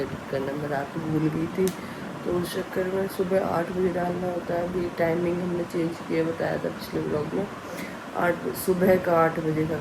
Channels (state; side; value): identical; both; correlation 1.00